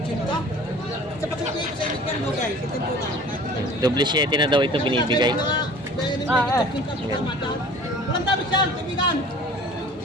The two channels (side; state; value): both; normal; correlation 0.45